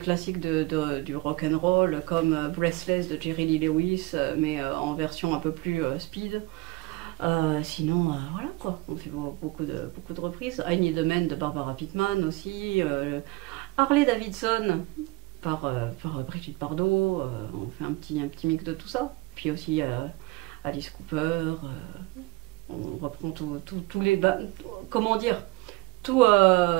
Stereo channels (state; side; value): quieter; left; 22.4 dB